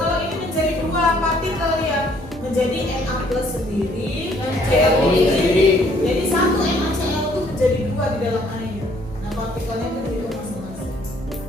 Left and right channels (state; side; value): normal; both; correlation 0.63